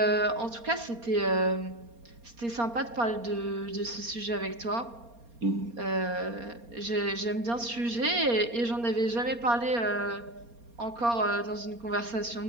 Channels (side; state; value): left; late; 4.3 ms